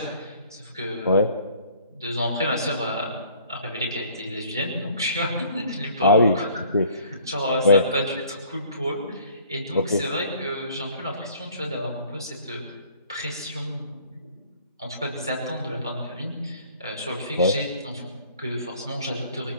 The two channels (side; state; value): both; inverted; correlation -0.55